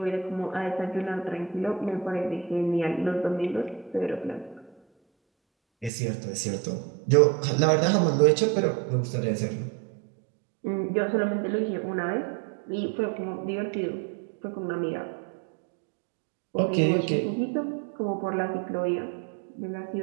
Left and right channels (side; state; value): left; drops out; at 5.9 s